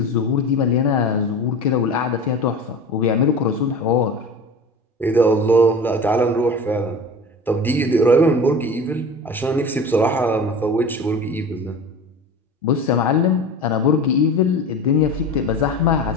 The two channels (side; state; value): both; normal; correlation 0.34